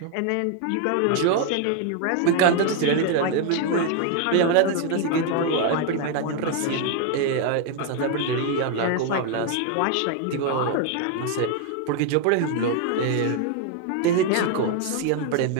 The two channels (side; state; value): both; different; correlation 0.00